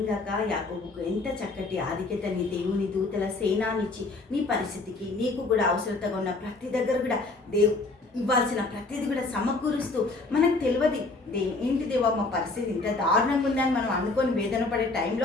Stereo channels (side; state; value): right; quieter; 3.4 dB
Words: యాకోబుకు ఎంత చక్కటి ఆధిక్యతని దేవుని దూతల సేనానిచ్చి నీ పరిస్థితికి నీకు కూడా అవసరతగా ఉన్న ప్రతి దగ్గర కూడా ఇవ్వాల్సిన ప్రతిదీ కూడా సమకూరుస్తూ మనకు తెలియదు ఏంటి దేవా మా పరిస్థితి ఇంత దారుణంగా ఉందని మనం అనుకొని వేదన పడే